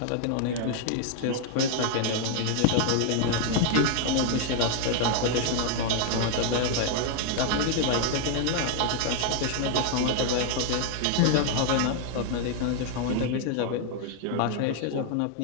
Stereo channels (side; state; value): both; different; correlation 0.00